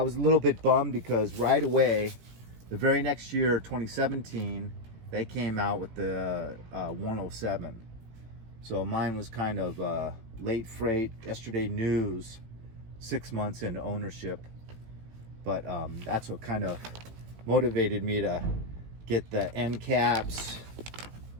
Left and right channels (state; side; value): late; left; 17 ms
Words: was a little bit bummed because right away, the very next year, 2017, they came out with the 107. So mine was kind of late freight, yesterday news, 6 months into ownership. But that's what kind of motivated me to get the end caps,